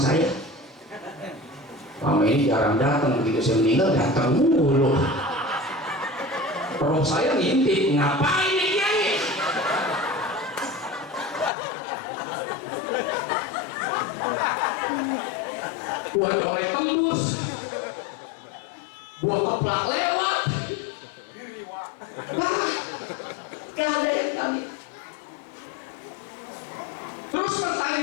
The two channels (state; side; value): drops out; right; at 11.5 s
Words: saya. Mama ini jarang datang, begitu saya meninggal datang mulu. Roh saya ngintip, ngapain nih Kiai? Buat colek tembus, buat keplak lewat. Gak ada yang kami. Terus